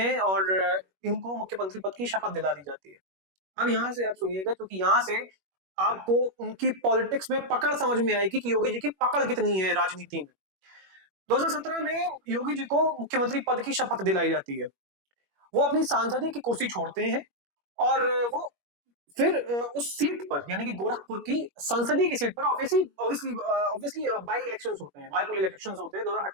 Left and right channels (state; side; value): late; left; 21 ms